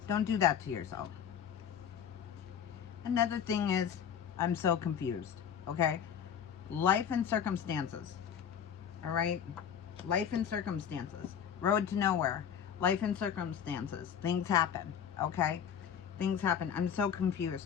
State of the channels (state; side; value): quieter; right; 8.2 dB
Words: Don't do that to yourself. Another thing is, I'm so confused, okay? Life and circumstances, all right? Life and circumstances. Road to nowhere. Life and circumstances. Things happen, okay? Things happen. I'm so